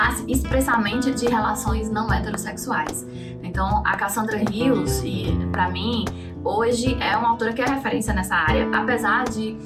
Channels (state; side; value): identical; both; correlation 1.00